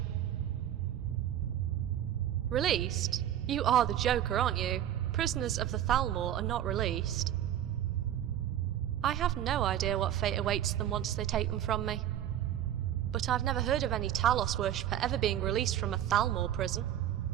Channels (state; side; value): quieter; left; 11.3 dB